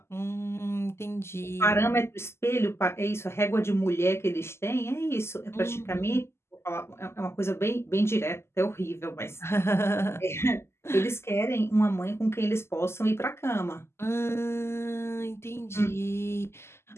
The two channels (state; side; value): late; right; 0.12 ms